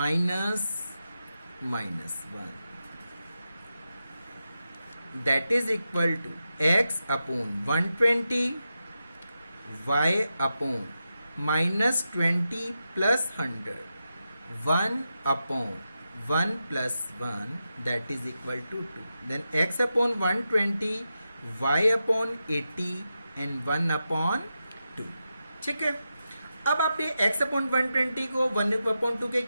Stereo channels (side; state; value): both; inverted; correlation -0.89